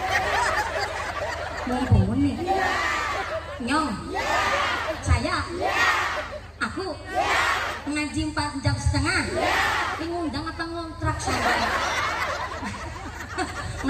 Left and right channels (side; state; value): both; identical; correlation 1.00